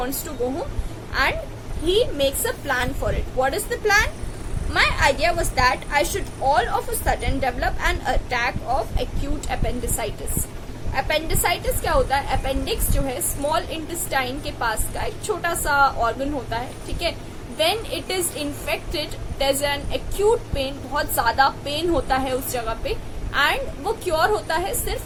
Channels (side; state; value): both; identical; correlation 1.00